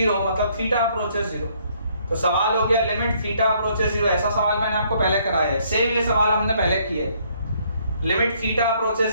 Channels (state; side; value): inverted; both; correlation -0.66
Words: मतलब थीटा अप्रोचेस 0। तो सवाल हो गया लिमिट थीटा अप्रोचेस 0। ऐसा सवाल मैंने आपको पहले कराया है, सेम ये सवाल हमने पहले किया है। Limit theta